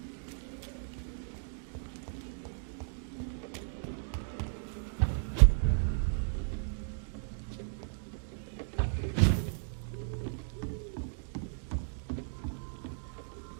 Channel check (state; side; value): silent; left; digital silence